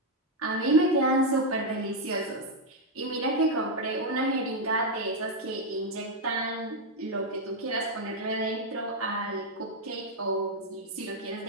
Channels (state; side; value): normal; both; correlation 0.01